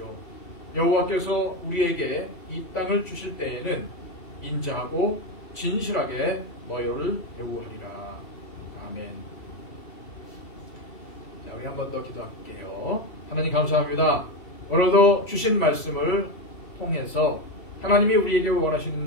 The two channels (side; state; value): right; late; 3.1 ms